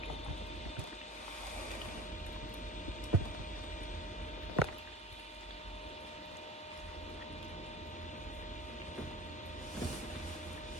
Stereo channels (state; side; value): normal; both; correlation 0.38